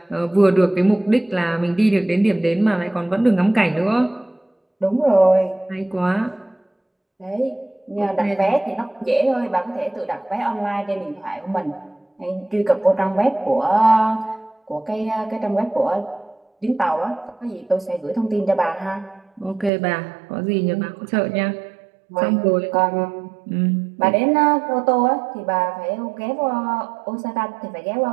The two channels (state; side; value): drops out; left; at 19.7 s